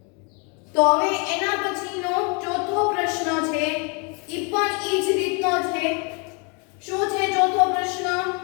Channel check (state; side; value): quieter; right; 34.4 dB